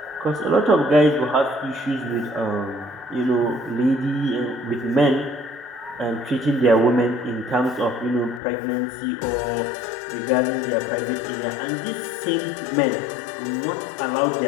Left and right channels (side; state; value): right; drops out; at 8.4 s